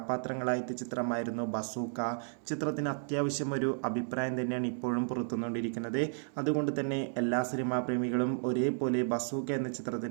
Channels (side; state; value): left; silent; 56 dB below the other